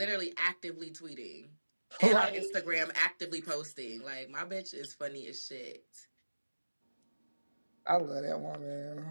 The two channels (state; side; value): inverted; both; correlation -1.00